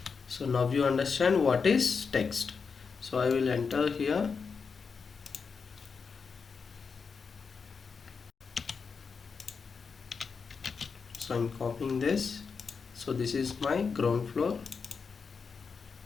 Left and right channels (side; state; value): right; quieter; 5.4 dB